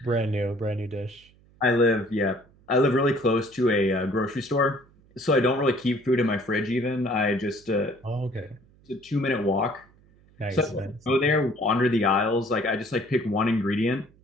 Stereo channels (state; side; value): noise; right; hum, 29 dB below the sound